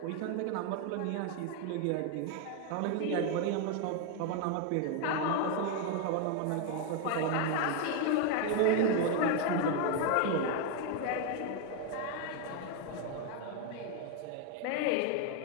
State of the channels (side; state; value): both; different; correlation 0.01